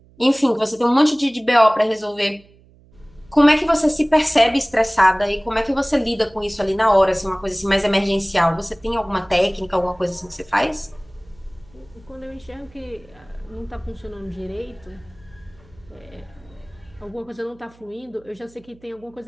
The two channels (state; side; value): noise; right; hum, 28 dB below the sound